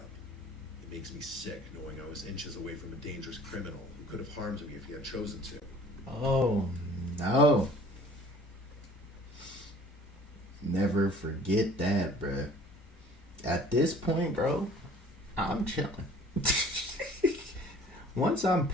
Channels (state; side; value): normal; both; correlation 0.50